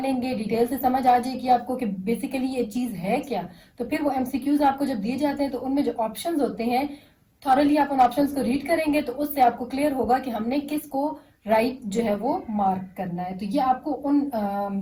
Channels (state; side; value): identical; both; correlation 1.00